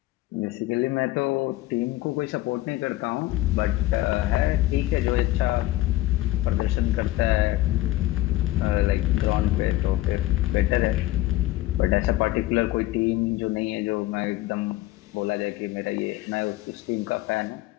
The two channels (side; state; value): right; quieter; 16.7 dB